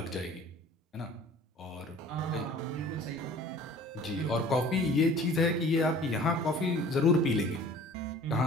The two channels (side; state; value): both; normal; correlation 0.48